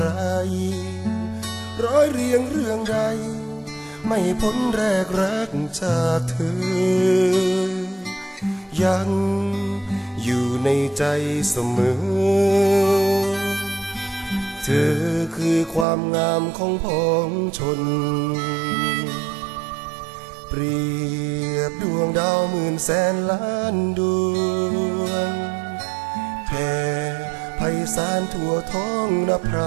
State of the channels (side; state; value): left; drops out; at 15.9 s